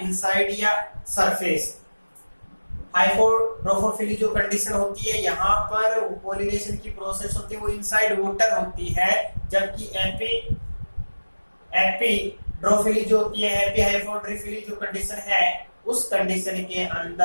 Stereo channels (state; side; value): inverted; both; correlation -1.00